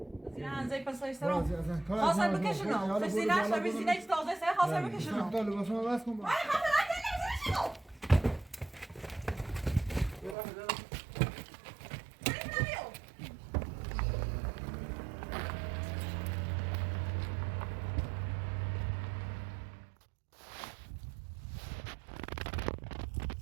زي پسایشترو خواستم بکشونم فسیلش و بیزینه که تازه سر خواستم بکشونم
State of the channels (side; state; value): left; drops out; at 10.4 s